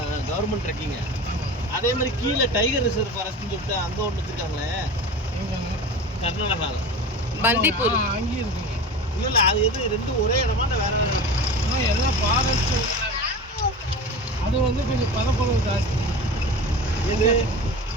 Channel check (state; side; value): normal; both; correlation 0.32